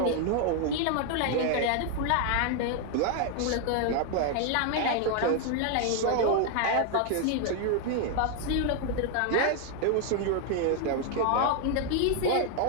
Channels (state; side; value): different; both; correlation 0.00